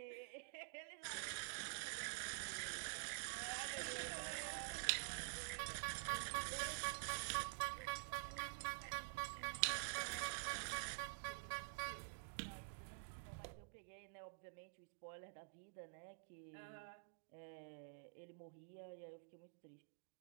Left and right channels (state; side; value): silent; left; digital silence